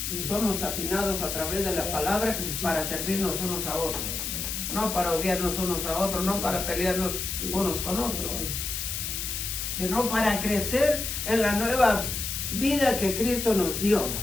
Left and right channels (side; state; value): left; noise; hiss, 3 dB below the sound